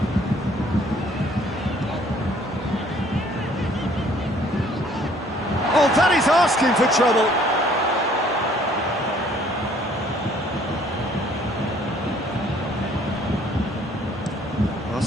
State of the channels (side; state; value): both; normal; correlation 0.59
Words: Oh, that is asking for trouble.